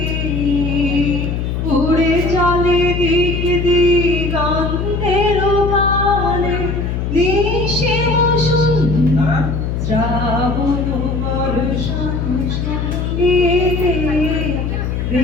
উড়ে চলে দিক দিগন্তের পানে নিশিম সুন্দর শ্রাবণ বর্ষণ সঙ্গী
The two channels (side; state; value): left; noise; hum, 2 dB below the sound